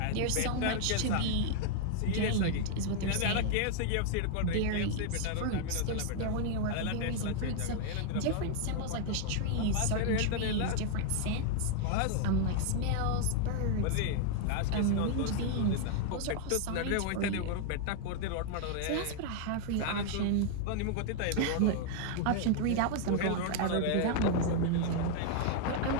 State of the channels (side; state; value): both; different; correlation 0.00